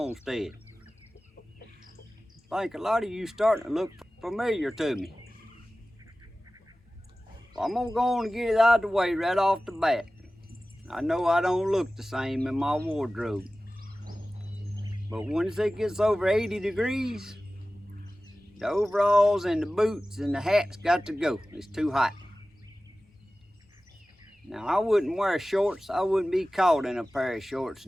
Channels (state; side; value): normal; both; correlation 0.96